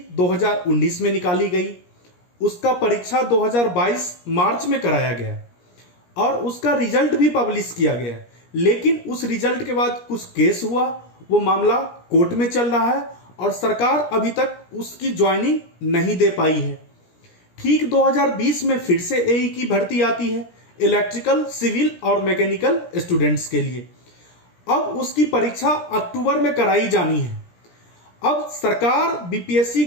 2019 में निकाली गई, उसका परीक्षा 2022 मार्च में कराया गया और उसका रिजल्ट भी पब्लिश किया गया। लेकिन उस रिजल्ट के बाद कुछ केस हुआ, वो मामला कोर्ट में चल रहा है और सरकार अभी तक उसकी ज्वाइनिंग नहीं दे पाई है। ठीक 2020 में फिर से एई की भर्ती आती है इलेक्ट्रिकल, सिविल और मैकेनिकल स्टूडेंट्स के लिए। अब उसकी परीक्षा अक्टूबर में कराई जानी है। अब सरकार, बीपीएससी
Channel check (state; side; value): late; right; 17 ms